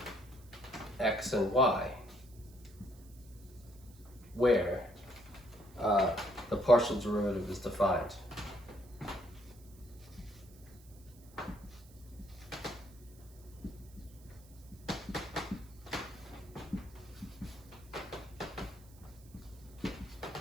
x and y where the partial derivative is defined.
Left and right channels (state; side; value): noise; right; hiss, 24 dB below the sound